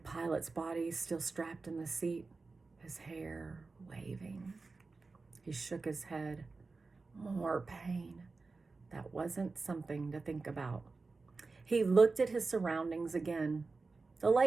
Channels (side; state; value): left; quieter; 4.0 dB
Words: body still strapped in the seat, his hair waving. He shook his head. More pain. That wasn't something to think about. He looked at his surroundings again. The